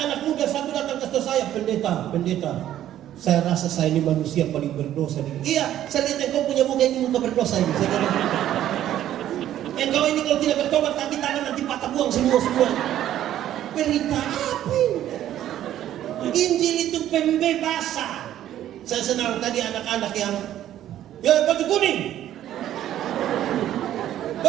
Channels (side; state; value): left; quieter; 12.0 dB